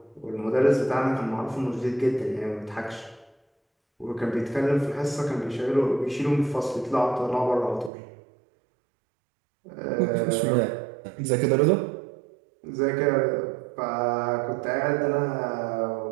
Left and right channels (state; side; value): drops out; left; at 7.9 s